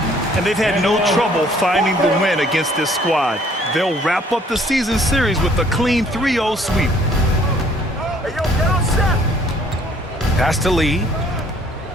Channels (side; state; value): both; normal; correlation 0.60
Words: And they've had no trouble finding the win against this squad. They'll wrap up the season series with a clean 3-0 sweep. Pass to Lee.